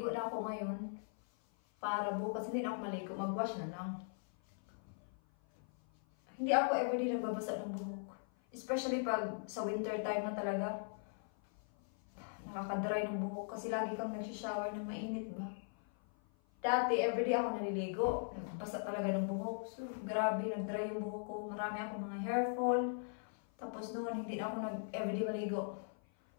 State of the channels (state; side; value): silent; right; 51 dB below the other